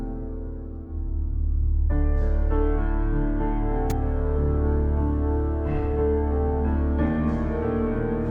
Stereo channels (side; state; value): both; identical; correlation 1.00